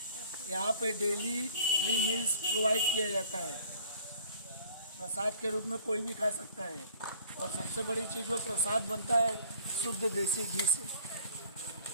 यहाँ पे डेली फ्री मील्स प्रोवाइड किया जाता है। प्रसाद के रूप में कोई भी खा सकता है और सबसे बड़ी चीज़ वो प्रसाद बनता है शुद्ध देसी घी से।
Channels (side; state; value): both; inverted; correlation -0.52